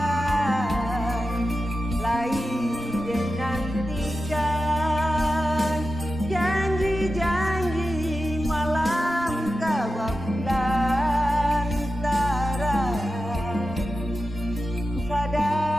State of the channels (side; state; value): both; normal; correlation 0.92